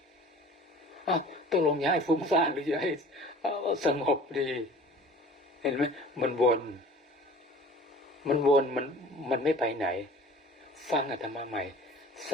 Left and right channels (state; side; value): normal; both; correlation 0.45